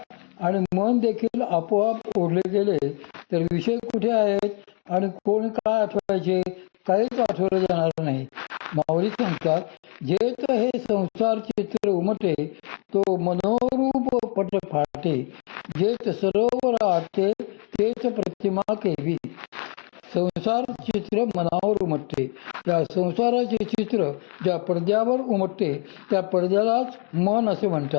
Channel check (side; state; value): right; quieter; 36.6 dB